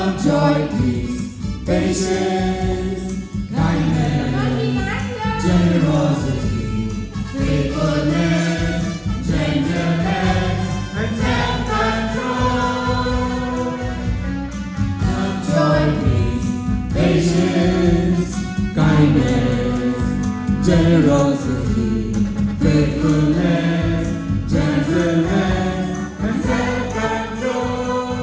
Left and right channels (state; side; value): identical; both; correlation 1.00